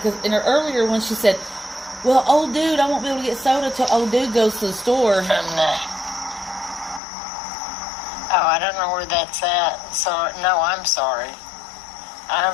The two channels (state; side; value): drops out; right; at 7.0 s